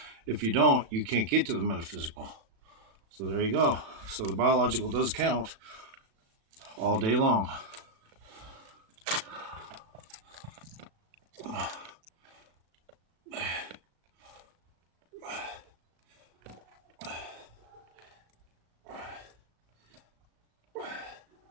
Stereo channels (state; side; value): late; left; 37 ms